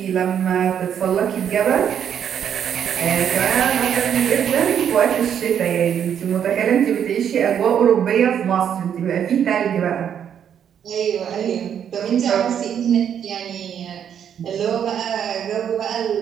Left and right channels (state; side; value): quieter; left; 8.7 dB